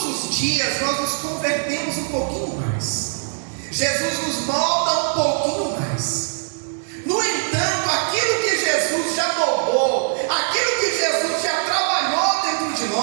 os dias nós nos convertemos um pouquinho mais. Jesus nos molda um pouquinho mais. No entanto, aquilo que Jesus já moldou, aquilo que Jesus já trabalhou dentro de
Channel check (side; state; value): left; silent; digital silence